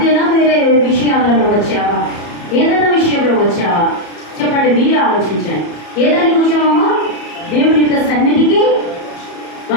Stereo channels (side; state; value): right; late; 34 ms